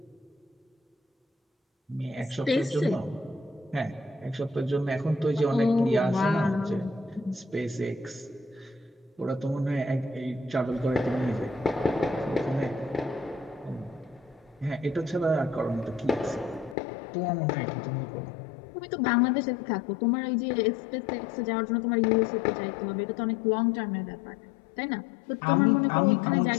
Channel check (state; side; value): drops out; right; at 16.8 s